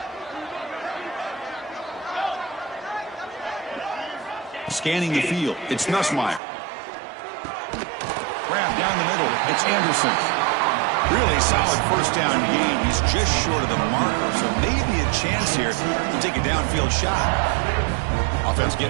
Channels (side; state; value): left; drops out; at 6.4 s